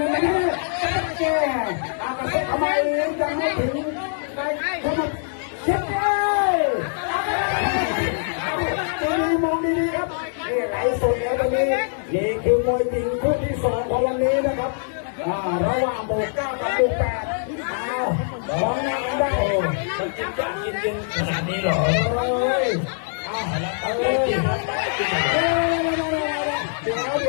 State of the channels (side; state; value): right; silent; digital silence